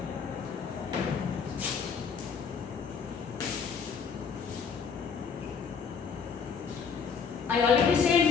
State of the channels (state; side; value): quieter; right; 6.2 dB